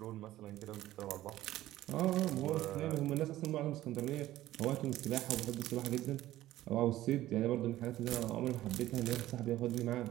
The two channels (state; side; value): quieter; left; 14.8 dB